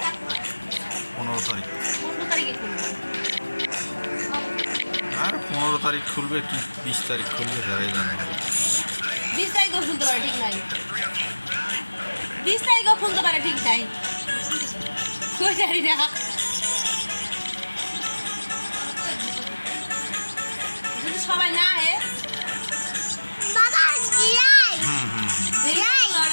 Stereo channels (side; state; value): both; inverted; correlation -1.00